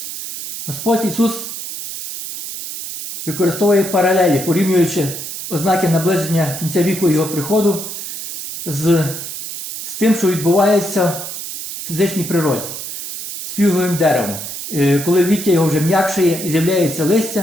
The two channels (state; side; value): noise; right; hiss, 8 dB below the sound